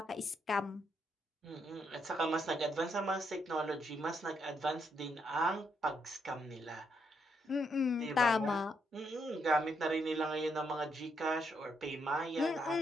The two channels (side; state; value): both; normal; correlation 0.76